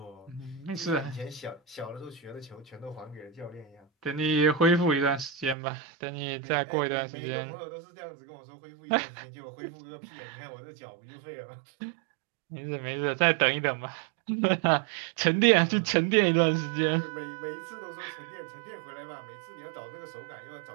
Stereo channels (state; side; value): drops out; left; at 5.6 s